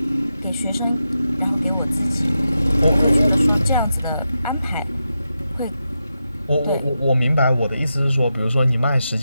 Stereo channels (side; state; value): both; inverted; correlation -0.88